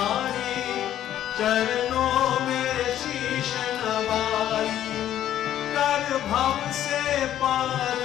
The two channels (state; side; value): quieter; right; 11.6 dB